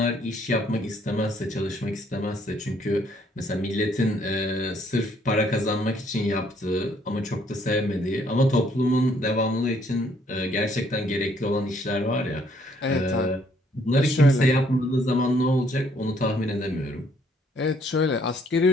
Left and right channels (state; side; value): normal; both; correlation 0.66